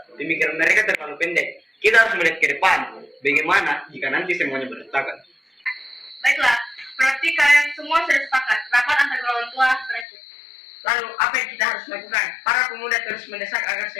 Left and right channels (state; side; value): drops out; right; at 10.1 s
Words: Pemikiran mereka terlalu pendek. Kita harus melihat ke depan. Bagaimana jika nanti semuanya berantakan? Baiklah, berarti kalian semua sudah sepakat. Rapat antar golongan tua berakhir. Lalu, apa yang kita harus lakukan? Para pemuda terus mendesak agar